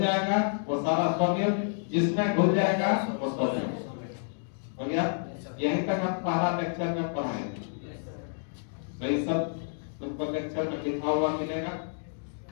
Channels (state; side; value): silent; right; digital silence